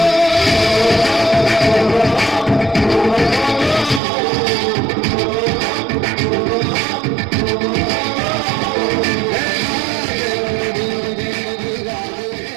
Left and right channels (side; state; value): left; drops out; at 4.0 s